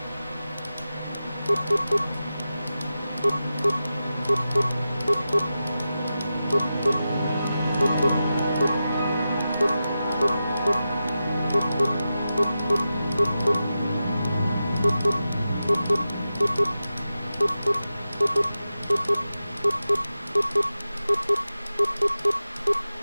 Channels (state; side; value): inverted; both; correlation -0.92